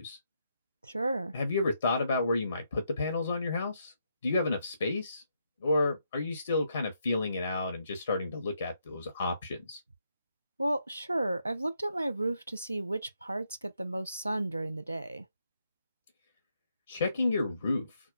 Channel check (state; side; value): inverted; both; correlation -0.78